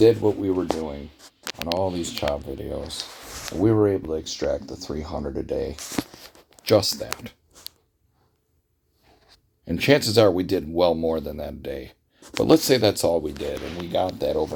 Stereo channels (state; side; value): identical; both; correlation 1.00